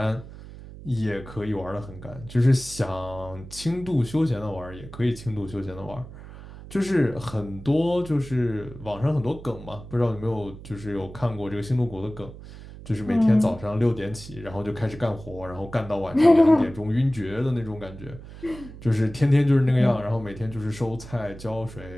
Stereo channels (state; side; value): noise; right; hum, 15 dB below the sound